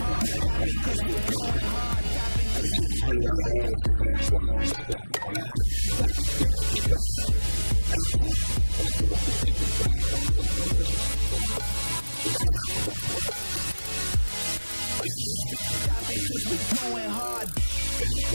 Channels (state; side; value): inverted; both; correlation -1.00